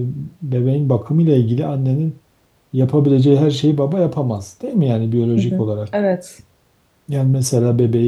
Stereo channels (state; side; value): identical; both; correlation 1.00